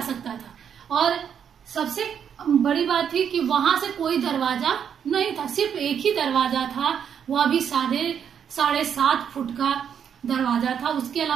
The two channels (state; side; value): quieter; left; 8.1 dB